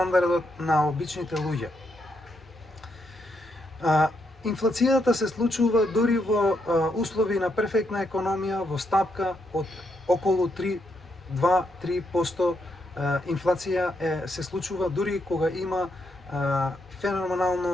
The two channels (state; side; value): normal; both; correlation 0.79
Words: на обичните луѓе. Инфлацијата се случува дури во услови на перфектна економија, во стапка од околу 2-3% инфлација се случува дури кога има